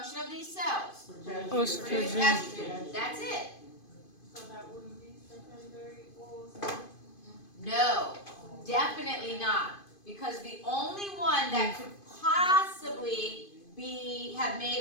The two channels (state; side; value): late; right; 2.5 ms